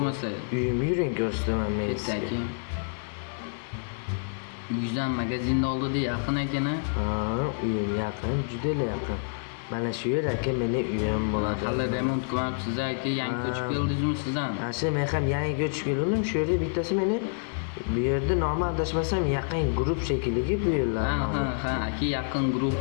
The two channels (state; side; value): silent; right; 56 dB below the other